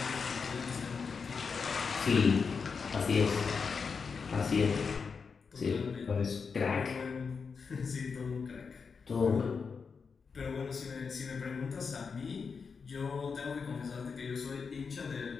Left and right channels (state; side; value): quieter; right; 5.4 dB